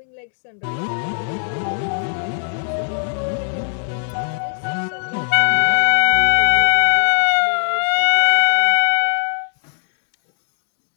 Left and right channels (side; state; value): right; silent; digital silence